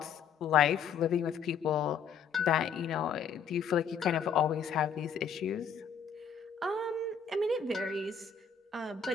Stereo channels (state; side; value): quieter; right; 6.6 dB